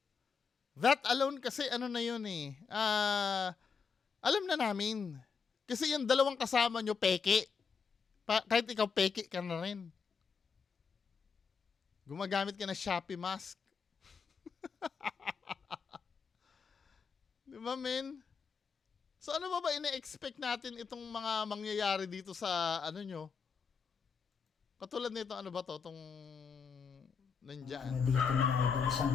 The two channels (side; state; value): right; quieter; 5.8 dB